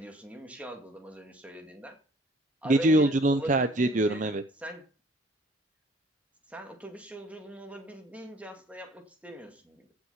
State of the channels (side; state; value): both; normal; correlation 0.55